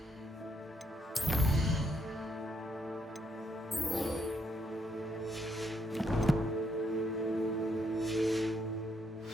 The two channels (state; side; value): normal; both; correlation 0.75